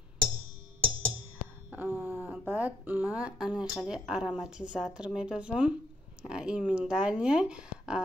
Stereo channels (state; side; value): normal; both; correlation 0.72